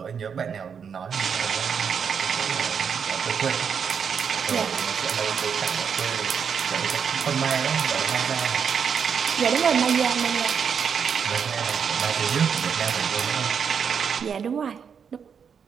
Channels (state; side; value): quieter; left; 6.9 dB